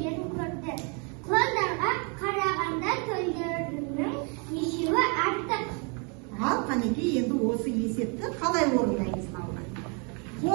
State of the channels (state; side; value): quieter; left; 35.1 dB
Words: көрді. Құландарға қарағанда төлдерінің ешеуі артық. Ал қанекей, енді осы есепті қалай орындаймыз балалар?